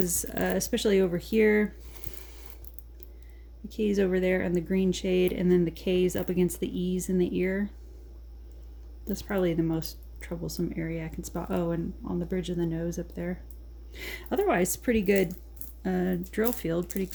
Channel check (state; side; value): identical; both; correlation 1.00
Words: especially over here, the K's over there and the green shade, and then the K's up against the E's in the ear. That's probably the most troublesome area I can spot. Oh, and on the bridge of the nose up there. Otherwise, pretty good drill field, pretty